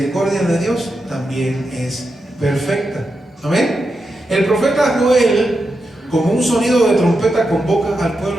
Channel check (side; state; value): both; normal; correlation 0.87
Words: de Dios también es perfecta, amén. El profeta Joel, como un sonido de trompeta, convoca al